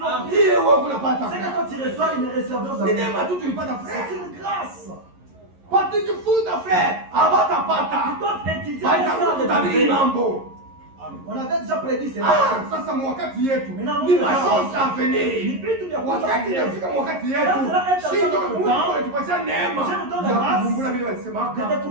ile wewe unapata c'est quand tu reçois une réserve ni neema tu tulipata frère c'est une grâce patijifunza frère abatapata tu dois étudier ça mambo. On avait déjà prédit cela. Sasa mwakati yetu ni mashosha venir. Wakati inafika mwakati yetu sio Mungu anatupatia neema ya kuvumbula vile walisemaka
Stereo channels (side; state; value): left; late; 11 ms